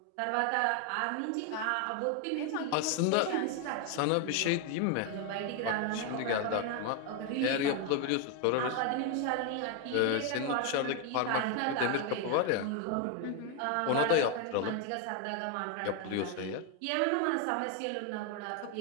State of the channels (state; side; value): different; both; correlation 0.01